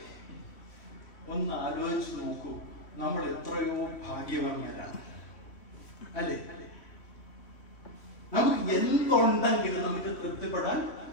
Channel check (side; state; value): right; late; 3.1 ms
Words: ഒന്ന് ആലോചിച്ച് നോക്കൂ. നമ്മൾ എത്രയോ ഭാഗ്യവാന്മാരാണ്, അല്ലേ? നമുക്ക് എന്തുണ്ടെങ്കിലും നമുക്ക് തൃപ്തിപ്പെടാൻ